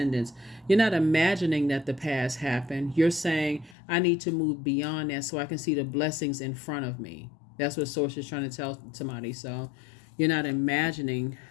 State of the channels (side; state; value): right; drops out; at 3.8 s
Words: You're not imagining that the past happened. You're saying, I need to move beyond that so I can see the blessings in front of me. That's what Source is trying to tell somebody. So you're not imagining